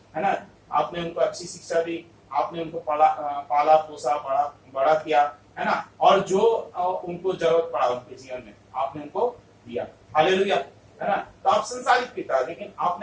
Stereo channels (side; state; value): both; identical; correlation 1.00